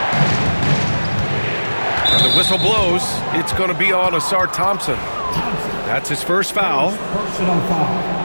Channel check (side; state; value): both; inverted; correlation -1.00